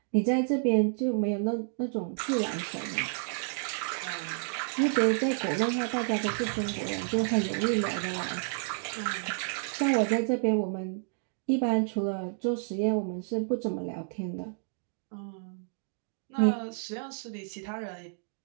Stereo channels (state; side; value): silent; left; 58 dB below the other